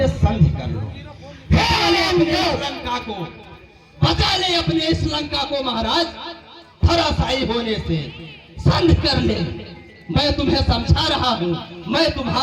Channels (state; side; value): identical; both; correlation 1.00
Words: संधि कर लो। अपने लंका को बचा ले, अपने इस लंका को महाराज धराशायी होने से संधि कर ले। मैं तुम्हें समझा रहा हूँ, मैं